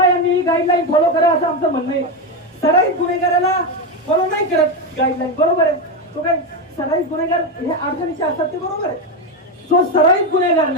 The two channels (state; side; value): normal; both; correlation 0.11